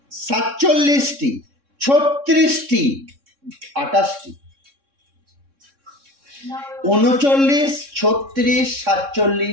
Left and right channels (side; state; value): left; late; 3.6 ms